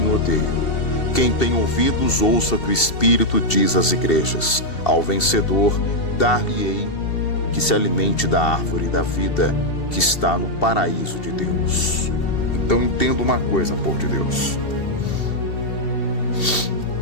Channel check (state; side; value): late; right; 2.7 ms